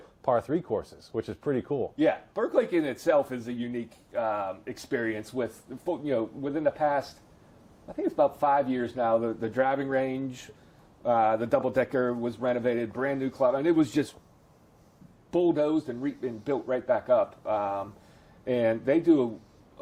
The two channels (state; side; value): identical; both; correlation 1.00